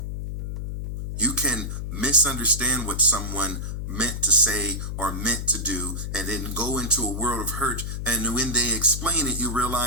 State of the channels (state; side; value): noise; left; hum, 5 dB below the sound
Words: You can misunderstand what someone meant to say or meant to do and then go into a world of hurt, and when they explain it, you